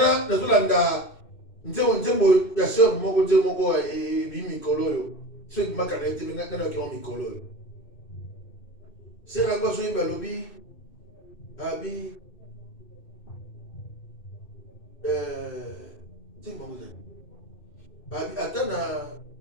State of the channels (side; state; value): right; late; 2.6 ms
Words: na zulanda nzembo ya sœur moko bi mikolo yo. So ki makana ete ngana ki on mikolo yo. Sera kwa so imba lobi abi nzembo ngozani. Abi atana